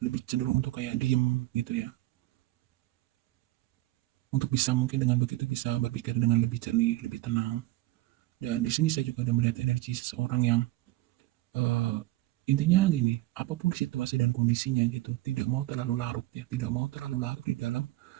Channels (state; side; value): quieter; left; 17.5 dB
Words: lebih cenderung untuk kayak diem gitu ya. Untuk bisa mungkin dengan begitu bisa berpikir dengan lebih jernih, lebih tenang. Dan di sini saya juga ada melihat energi seseorang yang uh, intinya gini, apapun situasi dan kondisinya gitu, tidak mau terlalu larut ya, tidak mau terlalu larut di dalam